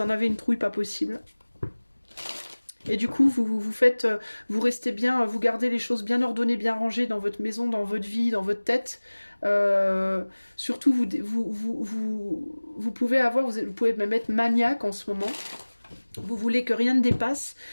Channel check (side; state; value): both; inverted; correlation -1.00